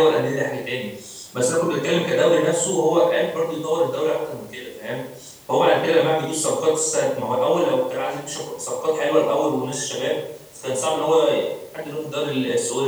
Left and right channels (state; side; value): identical; both; correlation 1.00